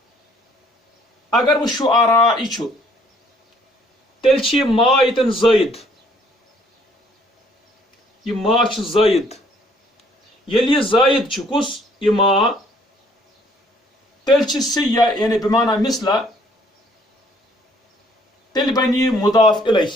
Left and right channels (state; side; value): normal; both; correlation 0.62